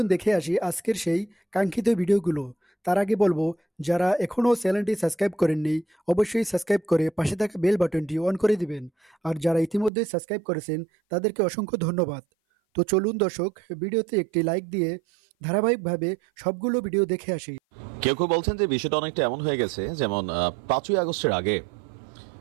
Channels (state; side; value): drops out; left; at 9.9 s